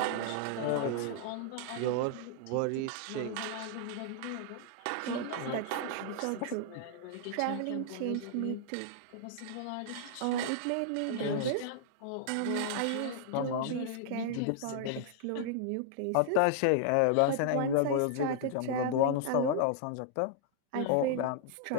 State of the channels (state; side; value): different; both; correlation -0.01